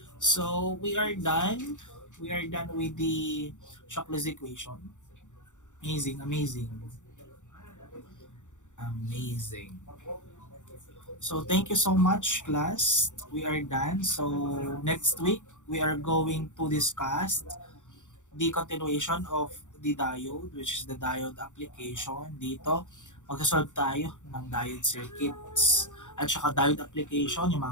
So we are done. We are done with the Shockley's equation. Amazing, amazing. Amazing. So thank you so much, class. We are done. So next week, we are going to discuss the continuation of the diode, which is the diode application. Dito, magsasolve tayo ng diode circuits. At saka diode application, yung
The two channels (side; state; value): right; late; 0.85 ms